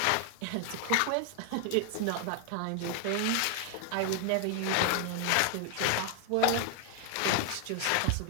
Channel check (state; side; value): different; both; correlation 0.00